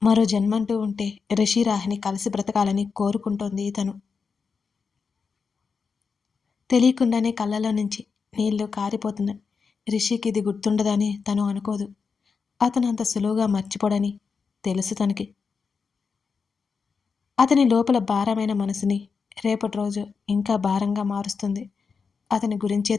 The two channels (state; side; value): quieter; right; 5.4 dB